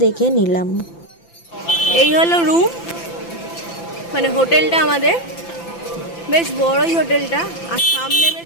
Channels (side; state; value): right; late; 5.9 ms